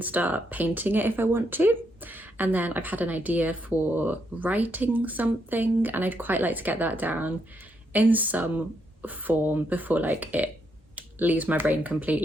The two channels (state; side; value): normal; both; correlation 0.77